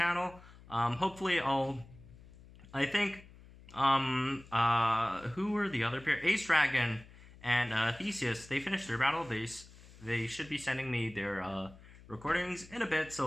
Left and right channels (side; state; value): left; noise; hum, 21 dB below the sound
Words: Hopefully I think, who were the other pair? Ace Dragon and Theseus, they finished their battle. They should be sending me their recordings in a bit,